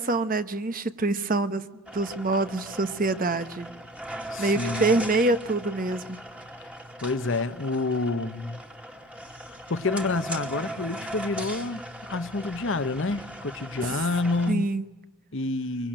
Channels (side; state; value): both; normal; correlation 0.42